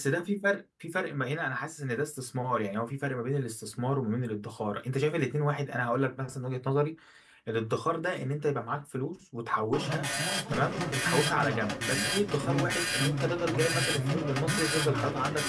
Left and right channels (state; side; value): identical; both; correlation 1.00